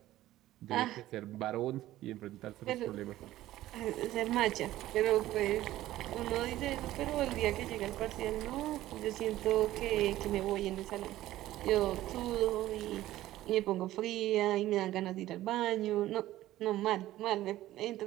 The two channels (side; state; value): left; quieter; 14.9 dB